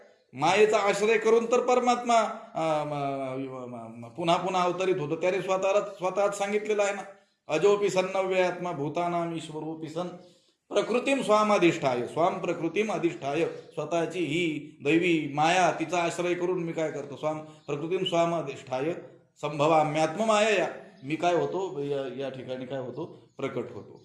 मायेचा आश्रय करून तर परमात्मा पुन्हा पुन्हा अवतरित होतो. त्याने स्वतःच सांगितलेलं आहे ना, अजोपी सन्नव्य आत्मा भूतानाम ईश्वरोपी सन प्रकृतीम स्वामाधिष्ठाय, स्वाम प्रकृतीम अधिष्ठाय. स्वतःची ही दैवी माया, तिचा आश्रय करून मी काय करतो? स्वाम प्रकृतीम स्वामाधिष्ठाय संभवाम्यात्म माया, मी काय होतो? या ठिकाणी काय होतो? प्रकट होतो.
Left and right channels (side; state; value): both; identical; correlation 1.00